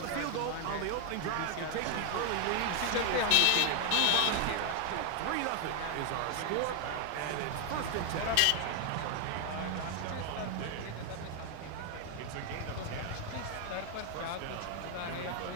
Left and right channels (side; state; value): both; different; correlation 0.00